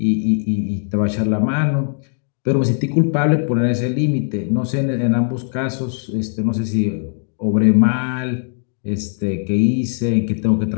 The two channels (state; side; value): silent; right; digital silence